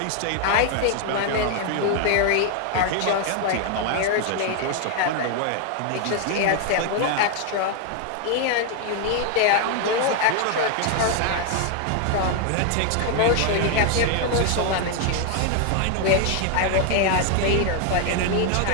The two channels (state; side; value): different; both; correlation 0.00